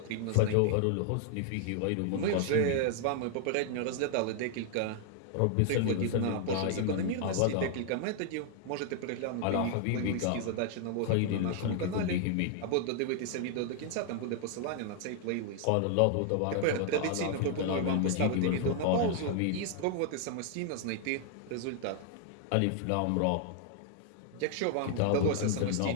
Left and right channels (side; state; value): both; different; correlation 0.00